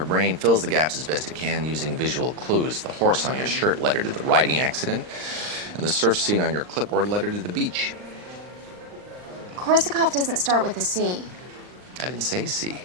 brain fills the gaps as best it can using visual clues. The horse on your shirt led her to the riding accident, and the surf scene on your clipboard led her to the beach. Korsakoff doesn't start with a C. I didn't say C.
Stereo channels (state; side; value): late; left; 39 ms